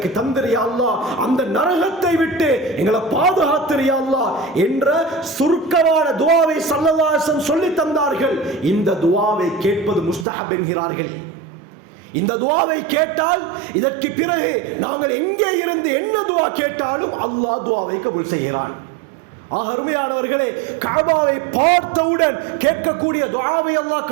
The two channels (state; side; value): drops out; left; at 10.2 s